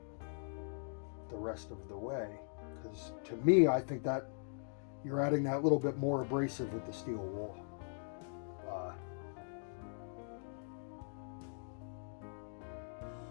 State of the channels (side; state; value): right; silent; digital silence